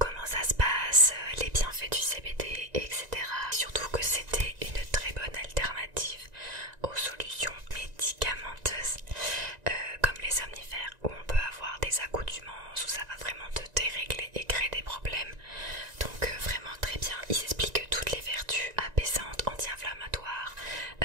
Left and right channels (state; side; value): late; left; 1.9 ms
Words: ça se passe, les bienfaits du CBD, etc. Surtout que c'était une très bonne alternative aux solutions médicamenteuses comme les somnifères où on peut avoir des accoutumances où ça va vraiment te dérégler et créer des problèmes. Donc vraiment très bien. Ils expliquent toutes les vertus apaisantes, anti-inflammatoires,